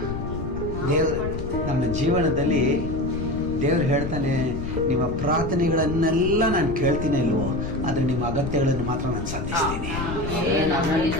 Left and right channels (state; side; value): noise; left; rumble, 6 dB below the sound